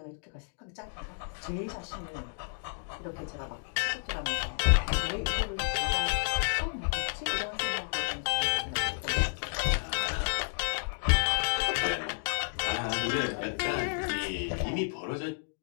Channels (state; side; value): silent; right; digital silence